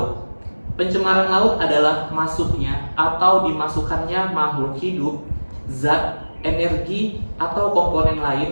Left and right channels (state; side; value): inverted; both; correlation -1.00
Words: Pencemaran laut adalah masuknya atau dimasukkannya makhluk hidup, zat, energi, atau komponen